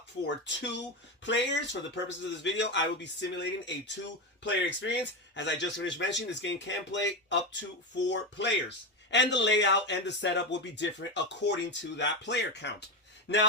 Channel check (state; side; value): normal; both; correlation 0.14